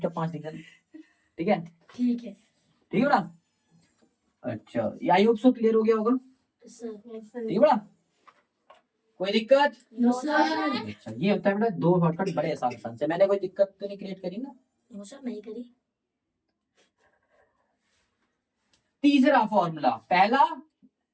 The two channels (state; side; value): identical; both; correlation 1.00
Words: 5 लिख देना। ठीक है, ठीक है ठीक है बेटा। अच्छा, ये आई होप सो क्लियर हो गया होगा। ठीक है बेटा, कोई दिक्कत? नो सर अच्छा, ये होता है बेटा 2 शॉर्टकट बड़े आसान से। मैंने कोई दिक्कत तो नहीं क्रिएट करी ना? नो सर नहीं करी। तीसरा फॉर्मूला, पहला,